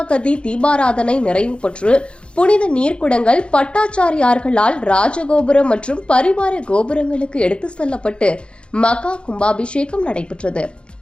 தீபாராதனை நிறைவு பெற்று புனித நீர்க்குடங்கள் பட்டாச்சாரியார்களால் ராஜகோபுரம் மற்றும் பரிவார கோபுரங்களுக்கு எடுத்துச் செல்லப்பட்டு மகா கும்பாபிஷேகம் நடைபெற்றது.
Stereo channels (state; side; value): late; right; 0.056 ms